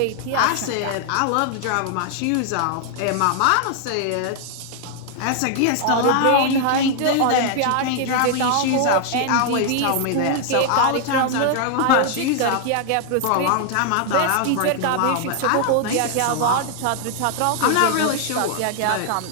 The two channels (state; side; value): different; both; correlation 0.00